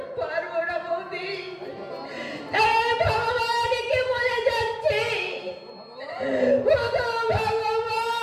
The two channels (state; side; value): identical; both; correlation 1.00